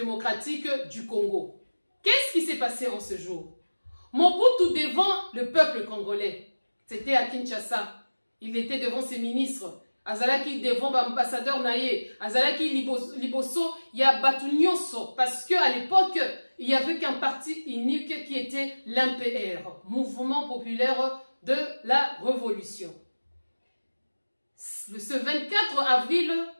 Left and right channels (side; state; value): both; inverted; correlation -1.00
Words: du Congo. Qu'est-ce qui s'est passé en ce jour? Mobutu devant le peuple congolais, c'était à Kinshasa, il était devant ses ministres. Azalaki devant l'ambassadeur Naye, Azalaki Liboso, il y a Batunyonso, parce qu'à l'époque, il n'y avait qu'un parti unique qui était l'MPR, Mouvement Populaire de la Révolution. ce 24 avril,